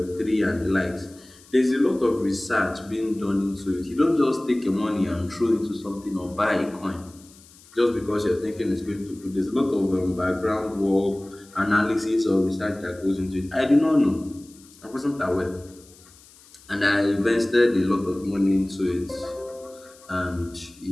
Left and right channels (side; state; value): left; noise; hiss, 25 dB below the sound